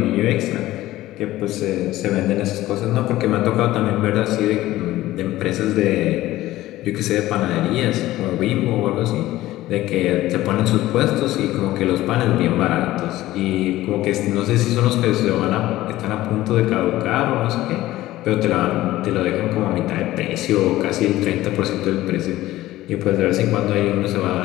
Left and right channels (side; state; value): right; quieter; 16.0 dB